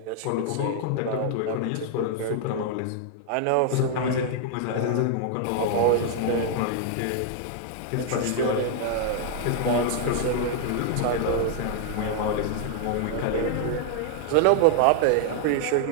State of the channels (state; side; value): different; both; correlation 0.00